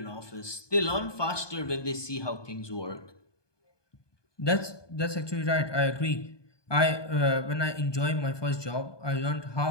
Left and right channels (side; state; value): right; late; 1.2 ms